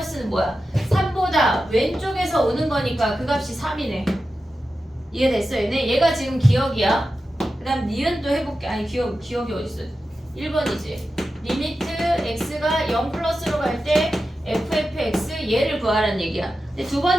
뭐야? 3보다 왼쪽에서 오는 거니까 그 값이 3이네. 이해됐어 얘네? 얘가 지금 기억이야. 그 다음 니은도 해볼게. 아니 기억이 어딨어? 1번이지. 리미트 x가 0 플러스로 갈 때 fx 얘를 구하라는 얘기야. 근데 두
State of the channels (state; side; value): normal; both; correlation 0.92